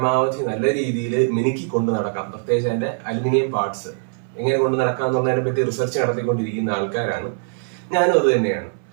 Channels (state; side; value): silent; left; 65 dB below the other